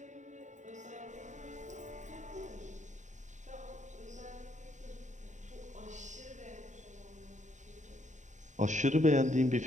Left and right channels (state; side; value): late; left; 0.35 ms